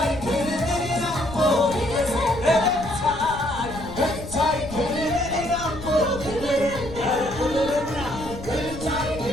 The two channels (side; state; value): left; noise; rumble, 12 dB below the sound